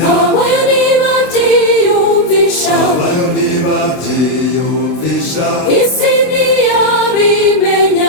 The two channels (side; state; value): right; late; 27 ms